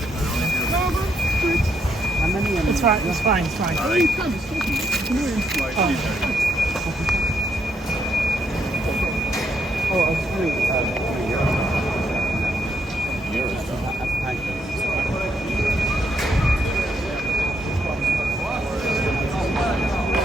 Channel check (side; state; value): both; normal; correlation 0.76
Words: No, good. How many? It's fine. It's fine. It's fine. Oh, you can. It's talking. Come here. Oh, I was doing euros. That's fine.